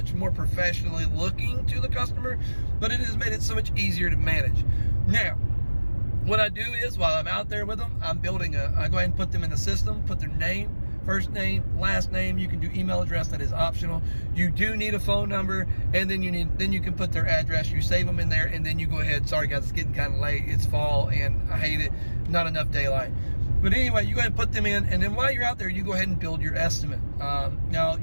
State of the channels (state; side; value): inverted; both; correlation -1.00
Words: more professionally looking to the customer, but it has made it so much easier to manage. Now, what I do is, while I'm out there with them, I go ahead and put them in the system, put their name, first name, last name. You can do email address, that is optional. You do need a phone number, and then you can put their address. You save them in there, and then you go ahead. Sorry guys, it's getting kind of late. It's fall, and I hate it. Not enough daylight. But anyway, you go ahead and put them in, and then while you're out there, you go ahead and build your estimate. Now,